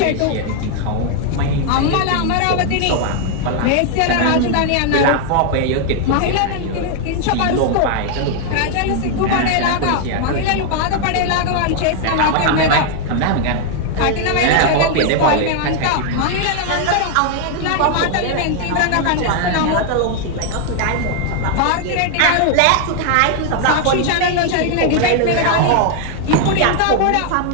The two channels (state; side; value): different; both; correlation 0.00